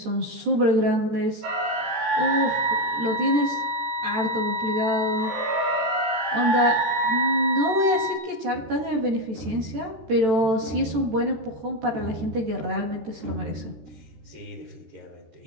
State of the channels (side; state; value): left; late; 13 ms